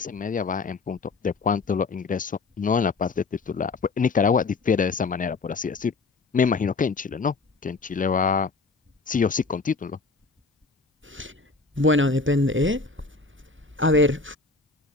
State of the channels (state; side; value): quieter; right; 4.0 dB